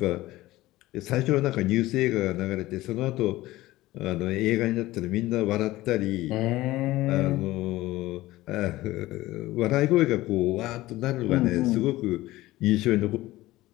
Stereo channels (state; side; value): quieter; right; 17.4 dB